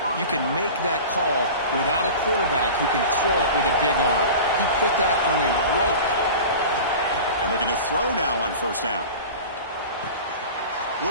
you can make that call without a quarterback who can throw it with a big arm. He put that on a rope. And looking to throw now on first down.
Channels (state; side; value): inverted; both; correlation -0.35